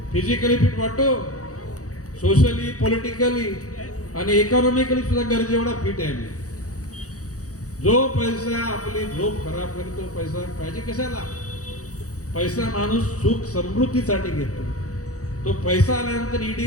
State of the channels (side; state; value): right; late; 0.66 ms